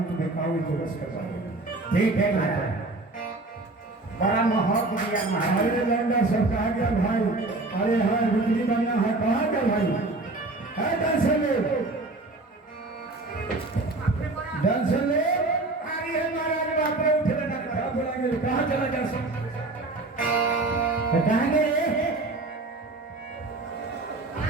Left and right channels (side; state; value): left; quieter; 3.1 dB